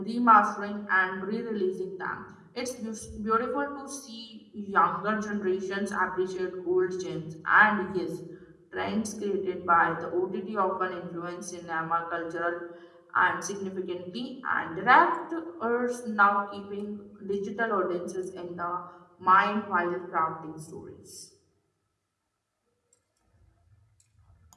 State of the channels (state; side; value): identical; both; correlation 1.00